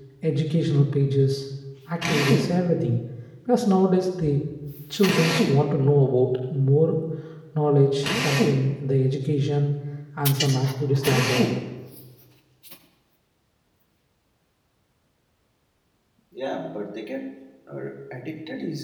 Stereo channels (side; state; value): both; identical; correlation 1.00